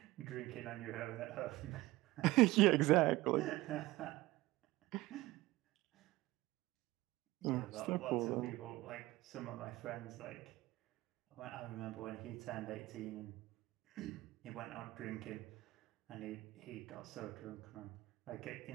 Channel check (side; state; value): left; quieter; 18.8 dB